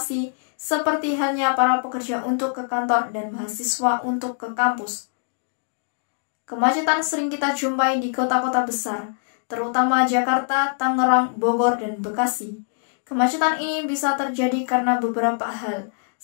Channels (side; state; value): right; silent; digital silence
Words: seperti halnya para pekerja untuk ke kantor dan mahasiswa untuk ke kampus. Kemacetan sering kita jumpai di kota-kota besar, terutama Jakarta, Tangerang, Bogor, dan Bekasi. Kemacetan ini bisa terjadi karena beberapa hal,